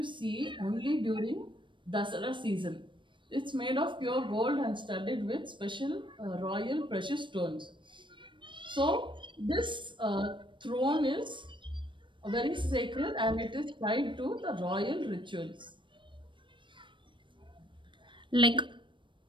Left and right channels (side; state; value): left; late; 0.24 ms